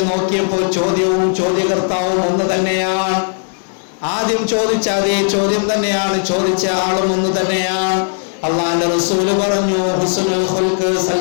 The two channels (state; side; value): silent; right; digital silence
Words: നോക്കിയപ്പോൾ ചോദ്യവും ചോദ്യകർത്താവും ഒന്ന് തന്നെയാണ്. ആദ്യം ചോദിച്ച അതേ ചോദ്യം തന്നെയാണ്, ചോദിച്ച ആളും ഒന്ന് തന്നെയാണ്. അല്ലാഹുവിന്റെ റസൂൽ പറഞ്ഞു, ഹുസ്നുൽ ഖുൽഖ്,